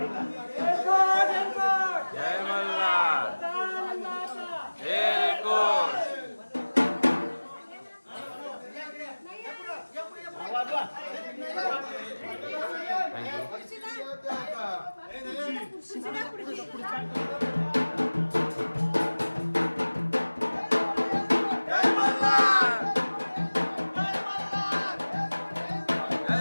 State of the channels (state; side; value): inverted; both; correlation -1.00